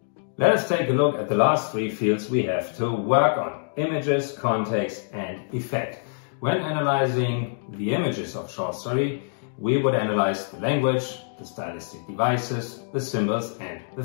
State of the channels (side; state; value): right; silent; digital silence